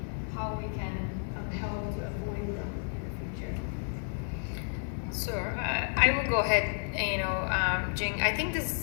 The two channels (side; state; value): right; silent; 57 dB below the other